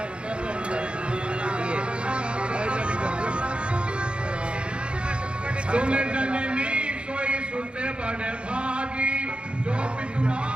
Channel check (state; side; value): late; left; 0.057 ms